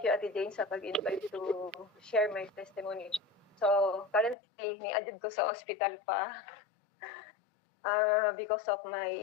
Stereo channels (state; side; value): drops out; right; at 4.4 s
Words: Jane sa pag-invite to share my testimony. So, currently, ni-adjud ko sa hospital pa because of